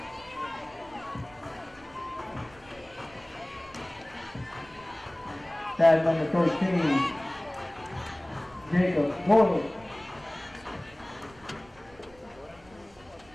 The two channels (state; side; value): noise; right; rumble, 26 dB below the sound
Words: Tag number 13, Jacob Boyle.